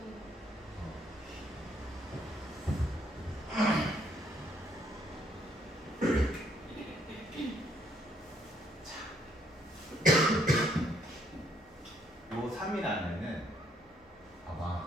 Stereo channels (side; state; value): both; normal; correlation 0.69